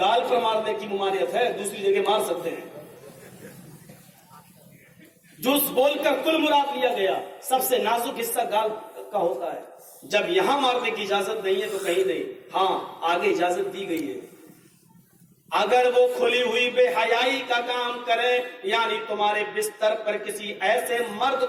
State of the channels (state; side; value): identical; both; correlation 1.00